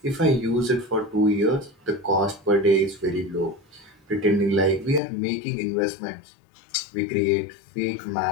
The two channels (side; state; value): right; drops out; at 5.0 s